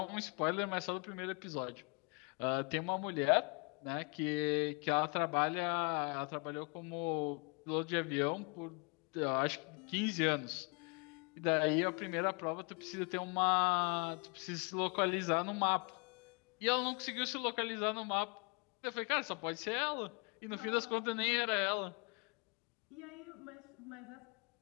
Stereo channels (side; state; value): right; quieter; 34.0 dB